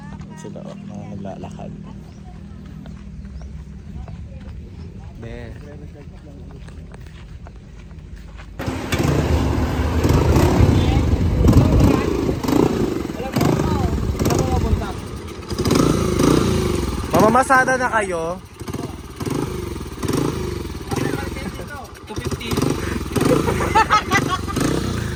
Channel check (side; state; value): both; identical; correlation 1.00